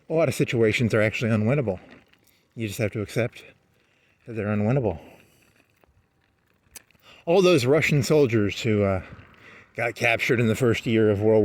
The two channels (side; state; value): both; identical; correlation 1.00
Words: a lot of situations are actually unwinnable. You just have to accept that they're unwinnable. All those Russian soldiers who got captured in the first year of World